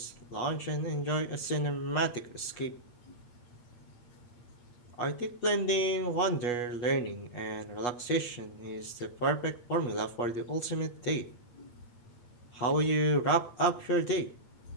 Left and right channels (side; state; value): right; late; 8.2 ms